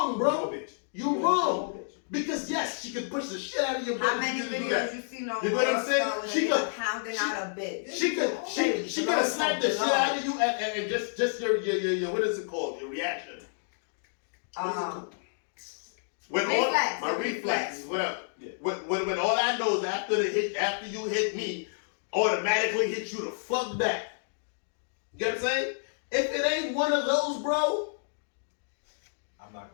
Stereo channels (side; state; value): right; silent; digital silence